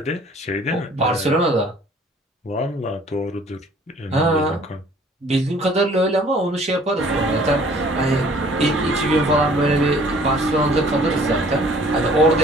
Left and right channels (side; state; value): both; normal; correlation 0.54